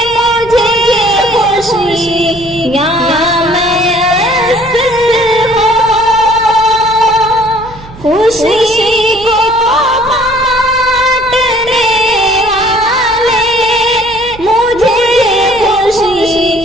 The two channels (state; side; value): noise; right; hum, 18 dB below the sound